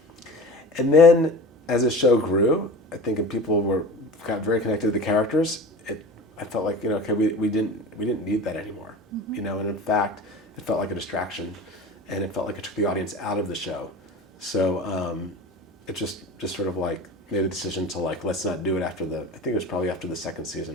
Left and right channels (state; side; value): normal; both; correlation 0.35